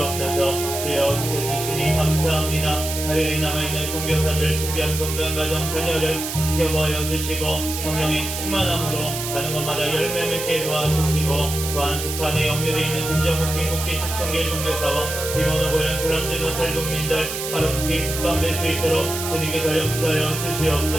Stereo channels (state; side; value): noise; right; hiss, 5 dB below the sound